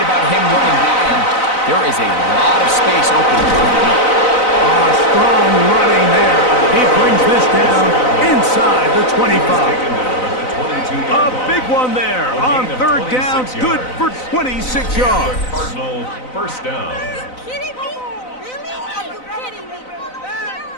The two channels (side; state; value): right; late; 4.0 ms